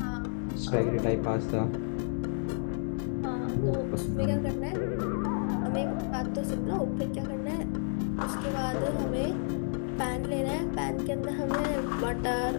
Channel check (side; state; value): right; silent; digital silence